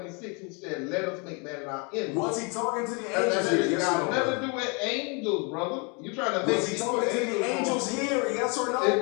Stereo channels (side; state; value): right; quieter; 33.2 dB